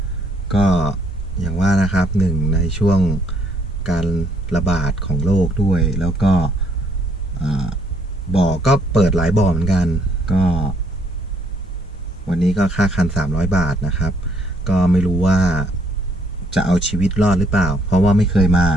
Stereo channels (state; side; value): normal; both; correlation 0.67